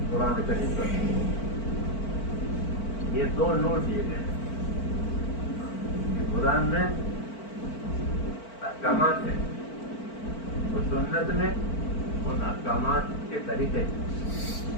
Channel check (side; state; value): right; late; 4.5 ms